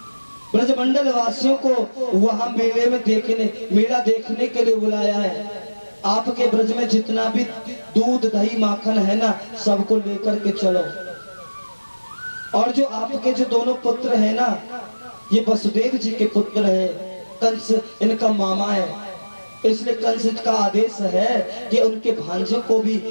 ब्रजमंडल वासियों को वहां मेला देखने के लिए बुलाया है। आपके ब्रज में जितना भी दूध दही माखन है ना, सबको लेकर के चलो। और जो आपके जो दोनों पुत्र है ना, ये वसुदेव जी के पुत्र है, कंस इनका मामा है, इसलिए कंस का आदेश है कि उनके भांजे को भी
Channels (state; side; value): inverted; both; correlation -1.00